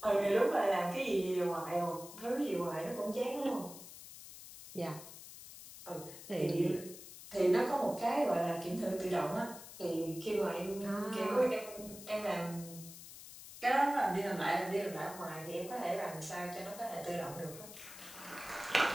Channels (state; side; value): noise; left; hiss, 14 dB below the sound